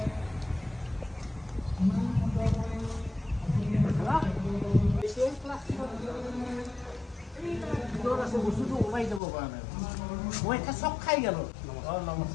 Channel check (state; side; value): drops out; right; at 9.2 s